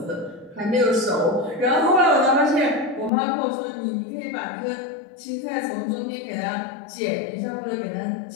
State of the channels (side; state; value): right; drops out; at 3.1 s